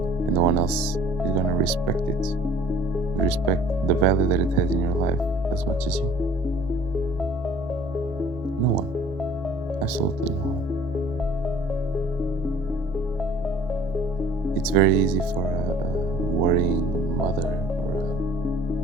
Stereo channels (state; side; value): normal; both; correlation 0.52